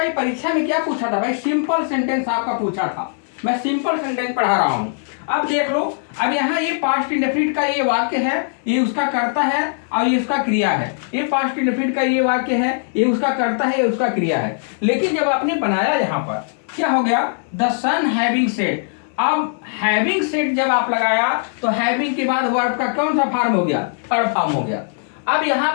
ये परीक्षा में क्या पूछा था भाई? सिंपल सेंटेंस आपका पूछा था। मैं सिंपल सेंटेंस पढ़ा रहा हूं। अब देख लो, अब यहाँ ये पास्ट इंडेफिनिट का ये वाक्य है, ये उसका कर्ता है और ये उसका क्रिया है। ये पास्ट इंडेफिनिट का ये वाक्य है, ये उसका कर्ता है, ये उसका क्रिया है। लेकिन जब आपने बनाया यहाँ पर क्या हो गया? The sun having set. अब हैविंग सेट जब आप लगाया तो हैविंग के बाद वर्ब का कौन सा फॉर्म हो गया? थर्ड फॉर्म हो गया। अब यहाँ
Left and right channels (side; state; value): right; silent; digital silence